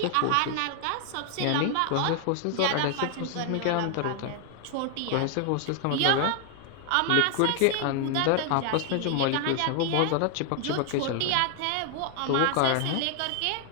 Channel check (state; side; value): different; both; correlation 0.00